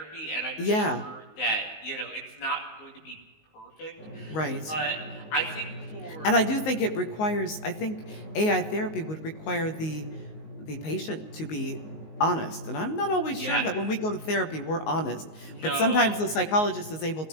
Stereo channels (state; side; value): late; right; 19 ms